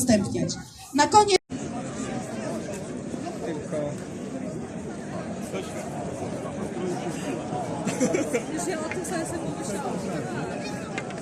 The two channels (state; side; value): identical; both; correlation 1.00